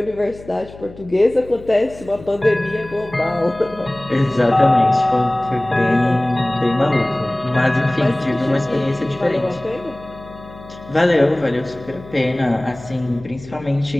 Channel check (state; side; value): noise; left; hum, 18 dB below the sound